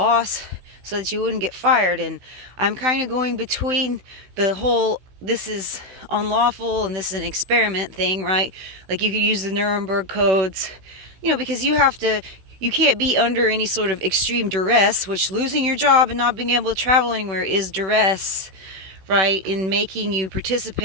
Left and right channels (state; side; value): late; left; 16 ms